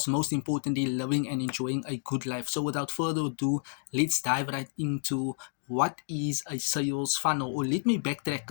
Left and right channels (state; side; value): silent; right; digital silence